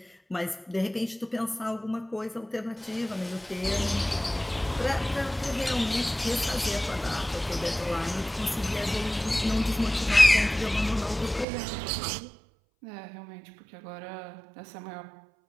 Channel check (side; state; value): left; drops out; at 11.5 s